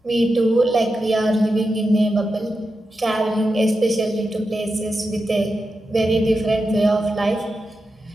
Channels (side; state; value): both; normal; correlation 0.89